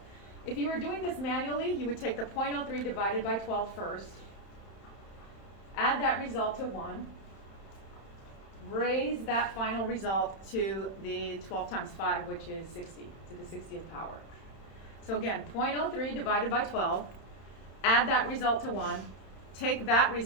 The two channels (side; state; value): right; late; 31 ms